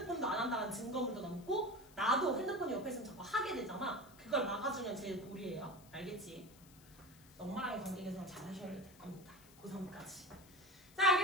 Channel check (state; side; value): noise; left; hiss, 23 dB below the sound